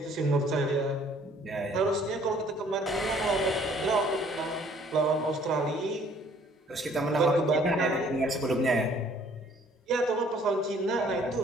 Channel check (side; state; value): both; normal; correlation 0.58